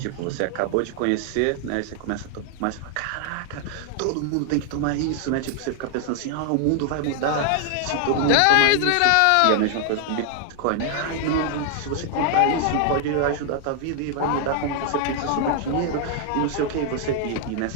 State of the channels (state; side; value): different; both; correlation 0.00